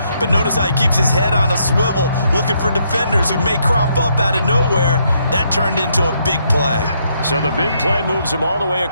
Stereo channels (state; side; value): inverted; both; correlation -0.74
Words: But notice how he keeps his head on a swivel, looking for defenders who may crop up out of nowhere. That turned into a big play. So the big play moves him all the way